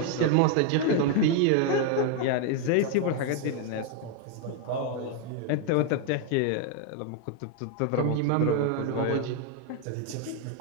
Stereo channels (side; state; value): both; different; correlation 0.00